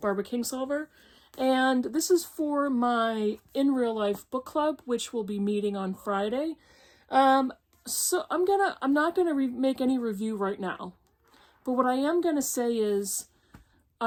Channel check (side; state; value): both; identical; correlation 1.00